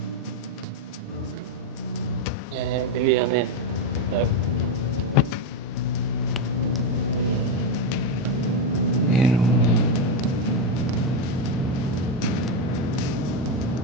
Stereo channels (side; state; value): both; normal; correlation 0.08